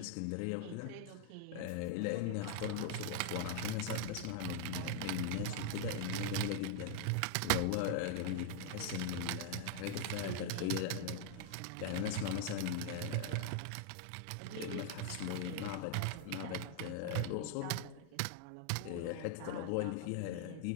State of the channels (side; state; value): both; different; correlation 0.00